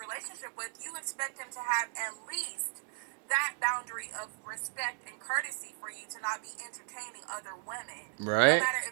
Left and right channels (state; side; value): silent; left; digital silence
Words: with, you expect him to have at least that boundary of respect and courtesy for you to not be entertaining other women, no Right? matter